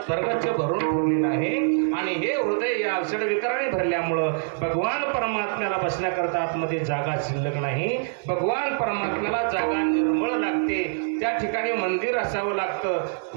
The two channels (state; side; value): silent; left; 62 dB below the other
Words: भरून ठेवलेलं आहे. आणि हे हृदय या षडविकाराने भरल्यामुळं भगवान परमात्म्याला बसण्याकरता आतमध्ये जागा शिल्लक नाही. भगवान परमात्म्याला जागा निर्मळ लागते, त्या ठिकाणी मंदिर असावं लागतं.